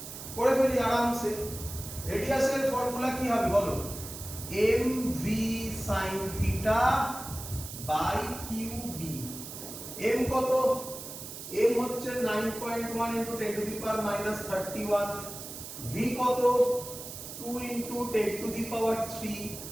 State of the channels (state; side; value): noise; right; hiss, 10 dB below the sound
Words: করে ফেলি আরামসে। রেডিয়াসের ফর্মুলা কি হবে বলো? mv sin theta by qb। m কত? m হচ্ছে 9.1 into 10 to the power minus 31। v কত? 2 into 10 to the power 3